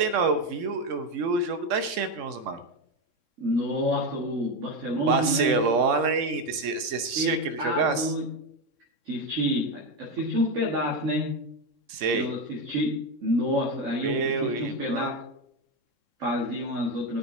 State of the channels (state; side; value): late; left; 3.6 ms